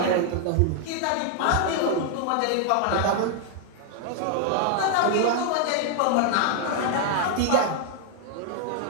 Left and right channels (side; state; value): both; different; correlation 0.00